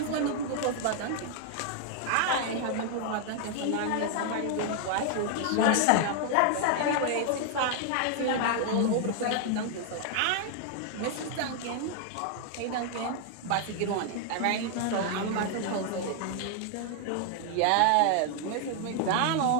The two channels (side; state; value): both; different; correlation 0.00